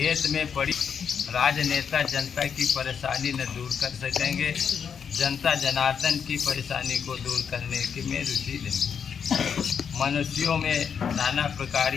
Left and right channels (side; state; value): right; quieter; 7.0 dB